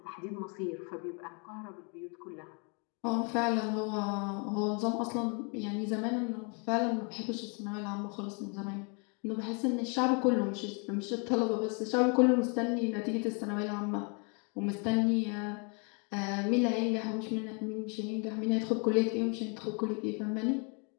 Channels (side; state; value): right; quieter; 35.9 dB